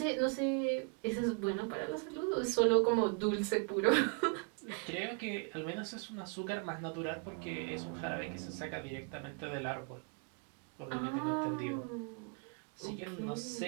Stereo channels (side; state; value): left; quieter; 36.8 dB